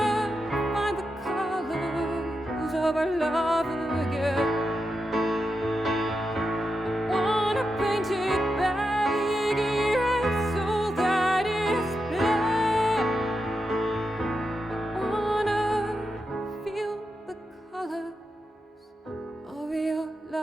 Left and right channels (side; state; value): both; normal; correlation 0.87